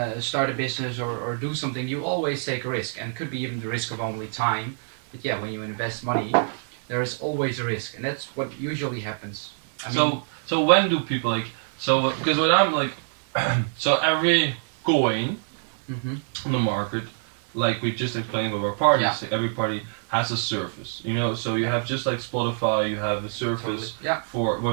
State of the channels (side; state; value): left; silent; digital silence